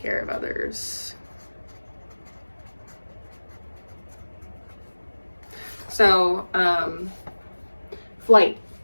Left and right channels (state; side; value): inverted; both; correlation -1.00